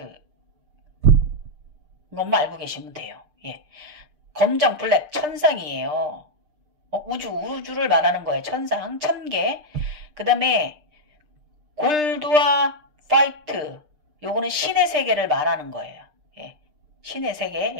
것만 알고 계시면 돼요. 예. 검정, 블랙, 천상이에요. 우주를 말하는 거예요. 천상, 1000개. 그 다음에 골드와 화이트 요거는 신의 세계를 말하는 거예요. 예. 신의 세계,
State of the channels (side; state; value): left; late; 6.6 ms